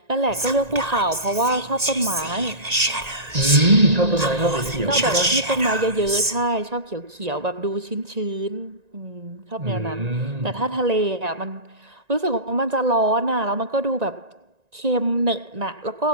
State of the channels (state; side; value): late; left; 1.9 ms